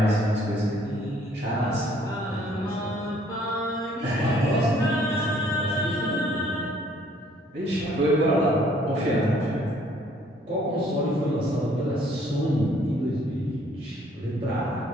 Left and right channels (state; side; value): normal; both; correlation 0.61